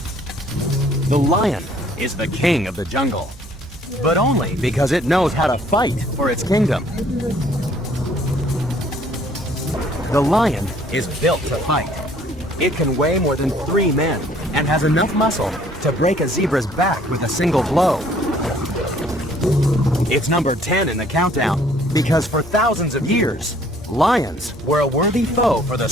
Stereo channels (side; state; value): both; normal; correlation 0.59